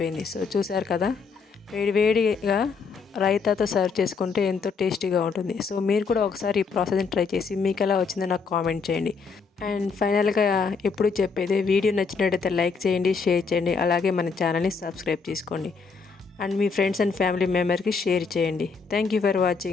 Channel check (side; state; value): right; quieter; 5.1 dB